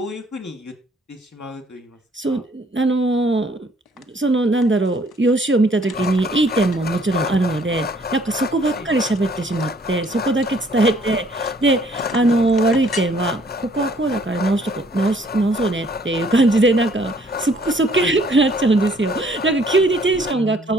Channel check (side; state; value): both; normal; correlation 0.61